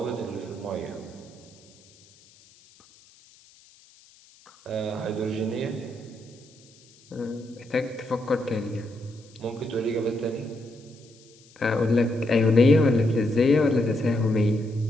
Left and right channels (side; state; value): left; noise; hiss, 27 dB below the sound